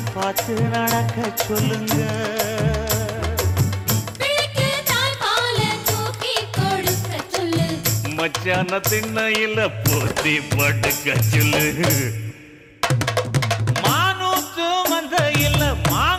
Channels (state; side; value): identical; both; correlation 1.00